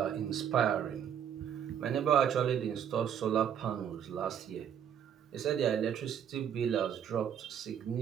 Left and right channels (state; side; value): quieter; left; 8.8 dB